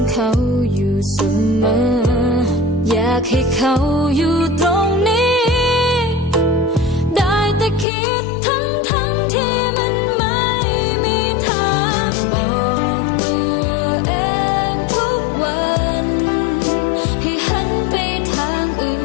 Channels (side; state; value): right; drops out; at 7.9 s